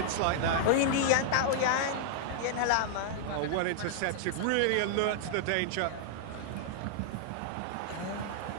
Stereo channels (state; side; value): different; both; correlation -0.01